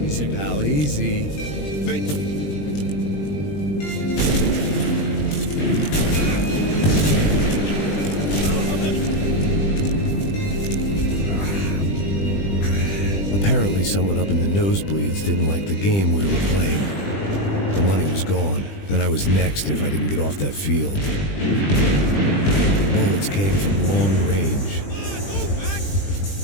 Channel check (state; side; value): late; right; 20 ms